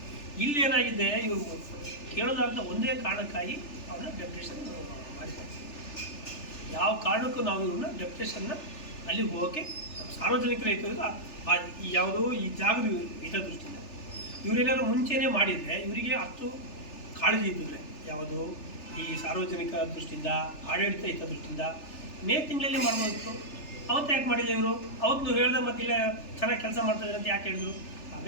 ಇಲ್ಲೇನಾಗಿದೆ, ಇವರು ಕೇಳೋದಾದಂಥ ಒಂದೇ ಕಾರಣಕ್ಕಾಗಿ ಅವನ್ನ ಡೆಪ್ಟೇಷನ್ ಮಾಡಿದ್ದಾರೆ. ಯಾವ ಕಾರಣಕ್ಕೂ ನಾವು ಇವ್ರನ್ನ ಡೆಪ್ಟೇಷನ್ನ ಅಲ್ಲಿ ಹೋಗೋಕ್ಕೆ ಸಾರ್ವಜನಿಕರ ಯಾವುದು ಈ ಜಾಗದ ಹಿತದೃಷ್ಟಿಯಿಂದ ಇವರೇನಾದ್ರು ಮುಂಚೆನೇ ಮಾಡಿದರೆ ಇವರಿಗೆ ಅಷ್ಟು ಕಾಳಜಿ ಇದ್ದಿದ್ರೆ ಯಾವುದು ಈ ಸಾರ್ವಜನಿಕ ದೃಷ್ಟಿಯಿಂದ, ಆಡಳಿತ ಹಿತದೃಷ್ಟಿಯಿಂದ ಮೇ ತಿಂಗಳಲ್ಲಿ ಮಾಡ್ಬೋದಿತ್ತು. ಅವತ್ತು ಯಾಕೆ ಮಾಡಿಲ್ಲ ಇವರು? ಅವತ್ತು ಹೇಳ್ದೆ ಮತ್ತೆ ಇಲ್ಲ ಚೆನ್ನಾಗಿ ಕೆಲಸ ಮಾಡ್ತಾಯಿದ್ದಾರೆ ಅಂತ ಯಾಕೆ ಹೇಳಿದ್ರು?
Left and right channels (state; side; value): late; right; 3.3 ms